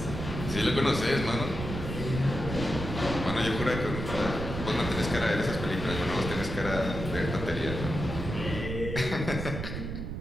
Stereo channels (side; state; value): right; noise; rumble, 5 dB below the sound